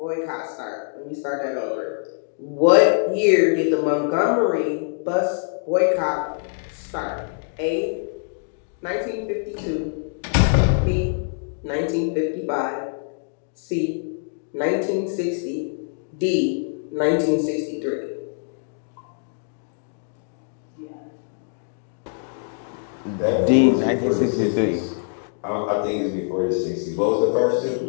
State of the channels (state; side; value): silent; right; digital silence